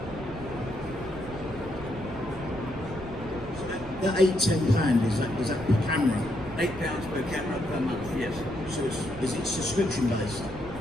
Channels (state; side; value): noise; right; rumble, 13 dB below the sound